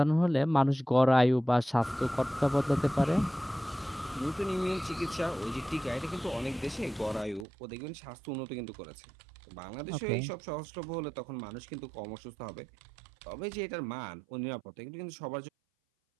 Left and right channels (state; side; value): drops out; left; at 7.5 s